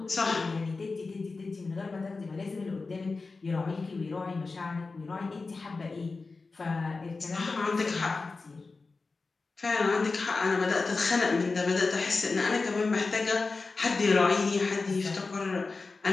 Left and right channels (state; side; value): quieter; right; 4.0 dB